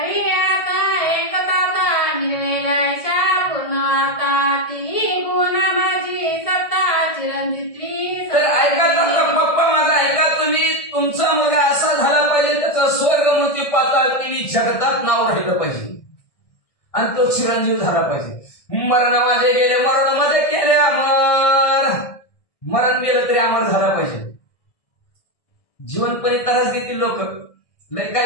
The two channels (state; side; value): late; right; 1.6 ms